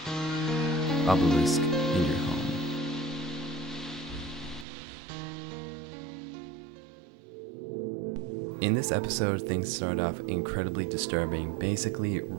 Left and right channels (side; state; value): left; drops out; at 4.7 s